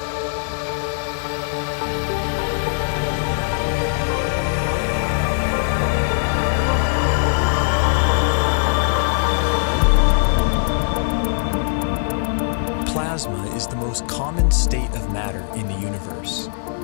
Plasma is the most common state of matter in the universe.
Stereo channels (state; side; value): silent; right; digital silence